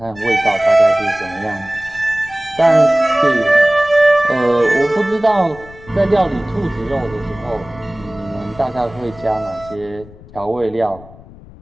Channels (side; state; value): left; noise; rumble, 20 dB below the sound